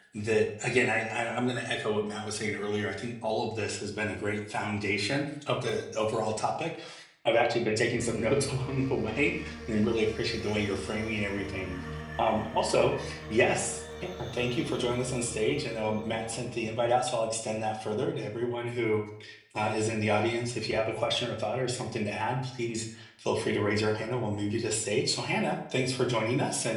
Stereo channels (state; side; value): identical; both; correlation 1.00